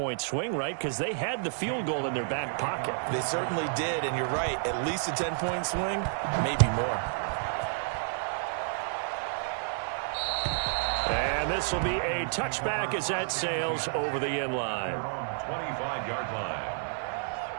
swing, right? Because they had the field goal in their back pocket. They certainly did, and you're right. At least a 10-point swing, maybe more. And this will be a touchback as that sails over the end line. 25-yard line.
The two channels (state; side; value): silent; left; digital silence